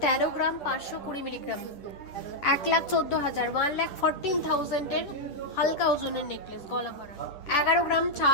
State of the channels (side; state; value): right; late; 10 ms